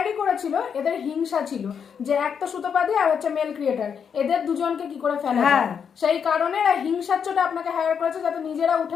করেছিল, এদের হিংসা ছিল যে একটা সুতোপাদি আর হচ্ছে মেল ক্রিয়েটার, এদের দুজনকে কি করে ফেলা যায়, সেই কারণে এরা হিংসার চোটে আপনাকে হায়ার করেছে যাতে নিজেরা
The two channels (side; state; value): right; quieter; 7.1 dB